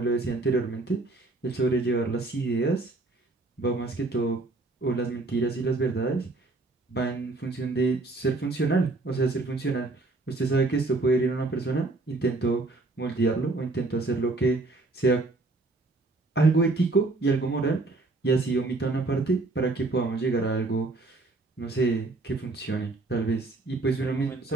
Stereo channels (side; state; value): left; quieter; 3.2 dB